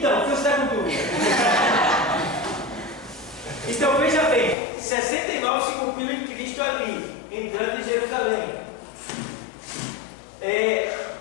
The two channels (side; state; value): right; drops out; at 4.5 s